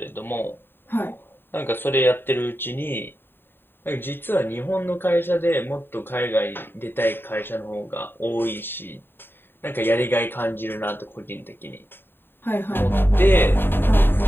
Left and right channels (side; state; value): right; late; 0.10 ms